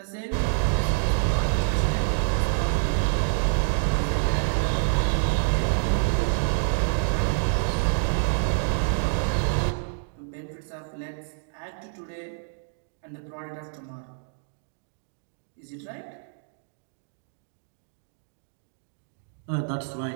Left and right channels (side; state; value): left; silent; digital silence